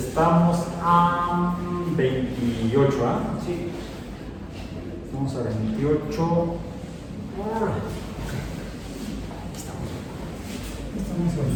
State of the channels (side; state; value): both; identical; correlation 1.00